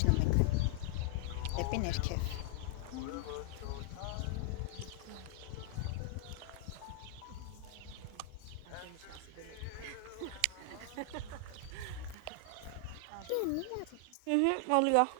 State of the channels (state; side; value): different; both; correlation 0.00